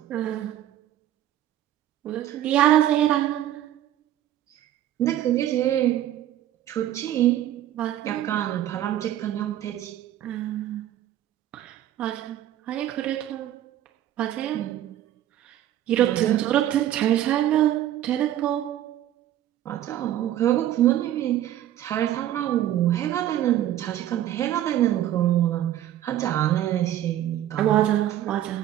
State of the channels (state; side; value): quieter; left; 12.3 dB